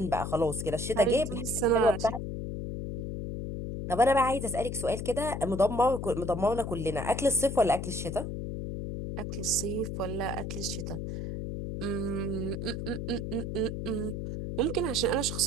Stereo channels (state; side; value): noise; left; hum, 5 dB below the sound